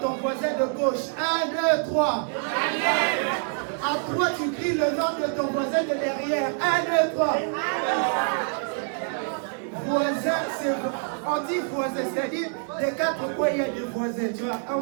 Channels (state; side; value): silent; left; 56 dB below the other